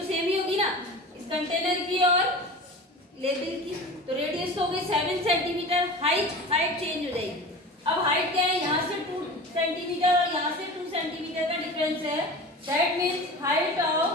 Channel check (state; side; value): normal; both; correlation 0.34